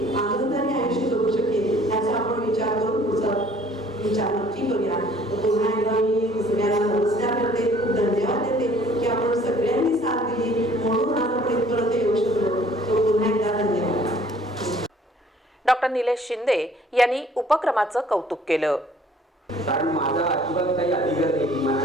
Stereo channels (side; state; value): both; normal; correlation 0.56